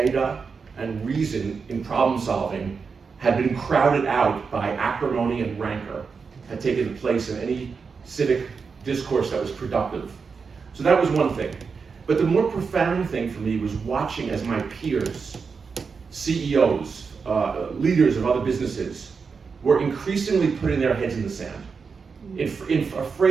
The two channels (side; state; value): left; quieter; 5.3 dB